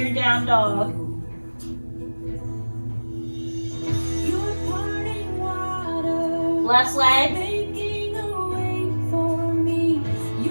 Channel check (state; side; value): inverted; both; correlation -1.00